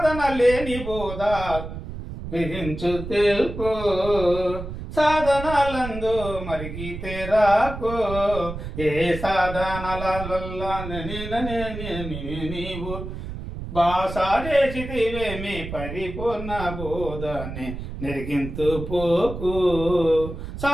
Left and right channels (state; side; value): noise; right; rumble, 8 dB below the sound